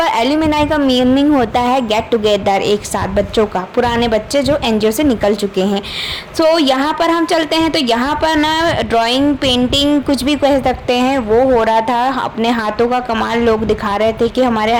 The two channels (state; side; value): identical; both; correlation 1.00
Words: एल्यूमिनाई का मीनिंग होता है गेट टुगेदर, एक साथ बच्चों का, पुराने बच्चे जो एनजीओ से निकल चुके हैं। तो यहाँ पर हम चलते हैं तो यहाँ पर ना ड्राइंग, पेंटिंग, कुछ भी कह सकते हैं, वो हो रहा था। अपने हाथों का कमाल लोग दिखा रहे थे कि हमारे